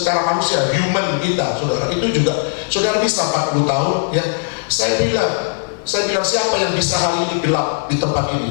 manusia, human kita, saudara. Itu juga saudara bisa 40 tahun ya. Saya bilang siapa yang bisa hari ini gelap di tempat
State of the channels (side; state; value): right; silent; digital silence